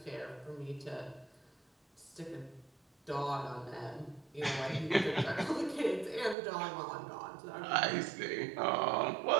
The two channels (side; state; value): left; drops out; at 6.4 s